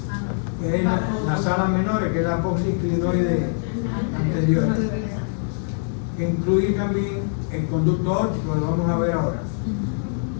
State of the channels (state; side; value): silent; right; digital silence